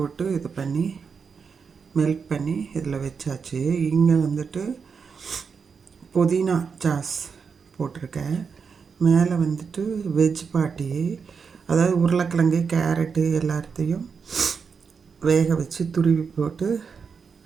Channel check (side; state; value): left; quieter; 5.8 dB